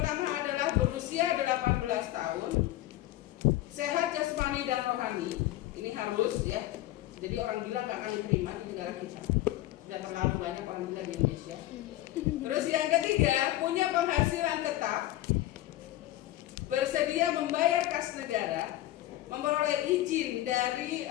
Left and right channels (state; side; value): quieter; right; 15.4 dB